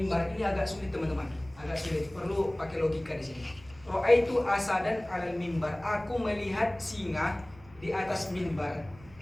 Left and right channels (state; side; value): noise; right; rumble, 23 dB below the sound